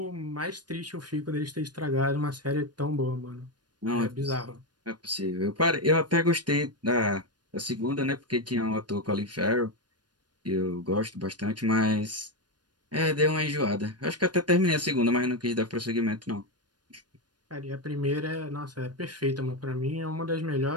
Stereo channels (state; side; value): late; left; 0.70 ms